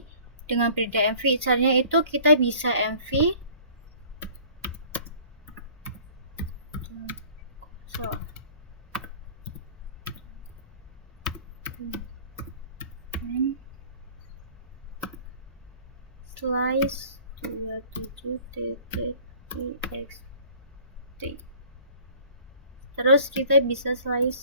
dengan perintah mv. Caranya itu kita bisa mv slice 27.txt. Terus kita bisa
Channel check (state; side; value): inverted; both; correlation -0.50